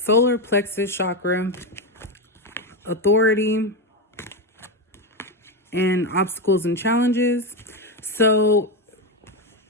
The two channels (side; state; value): both; normal; correlation 0.11